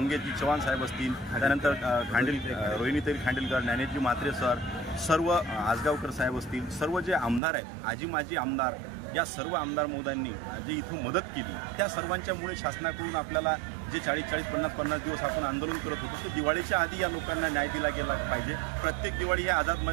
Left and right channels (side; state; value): left; drops out; at 7.4 s